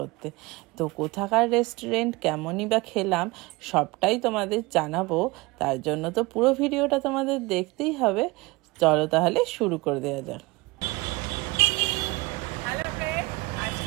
তো কোথাকার রেস্টুরেন্ট, কেমনই বা খেলাম সবটাই তোমাদের জানাবো। তার জন্য তো পুরো ভিডিওটা তোমাদের দেখতেই হবে। চলো তাহলে শুরু করে দেওয়া যাক। হ্যালো ফ্রেন্ড,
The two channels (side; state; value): left; quieter; 23.0 dB